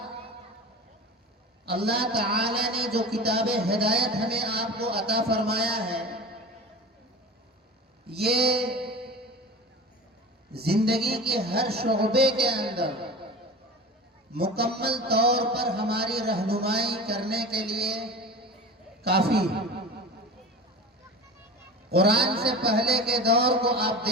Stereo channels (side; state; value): both; normal; correlation 0.32